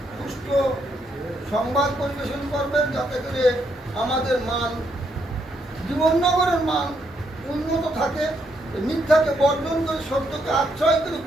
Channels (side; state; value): both; normal; correlation 0.75